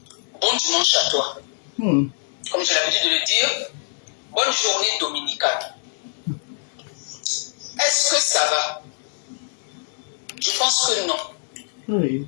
bon dimanche à toi. Comme j'ai l'habitude de le dire, bonne journée dominicale. Est-ce que ça va? Je pense que non.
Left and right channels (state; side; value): silent; right; digital silence